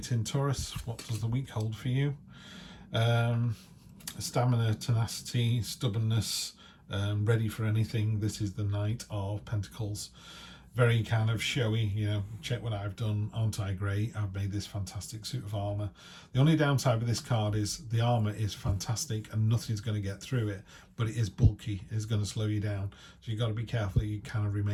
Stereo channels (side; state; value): both; identical; correlation 1.00